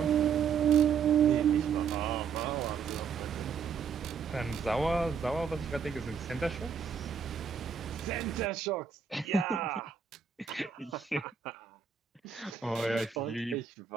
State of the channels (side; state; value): left; quieter; 6.7 dB